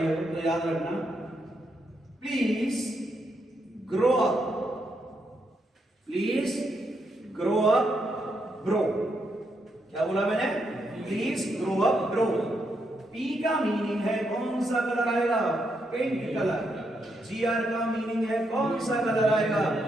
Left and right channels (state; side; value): normal; both; correlation 0.79